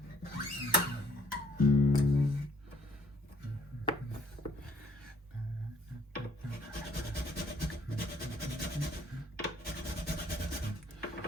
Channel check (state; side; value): normal; both; correlation 0.62